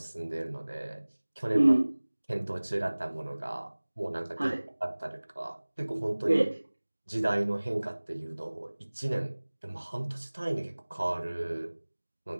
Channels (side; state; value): both; inverted; correlation -1.00